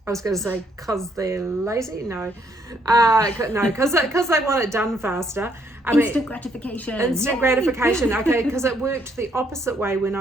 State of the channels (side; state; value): both; normal; correlation 0.70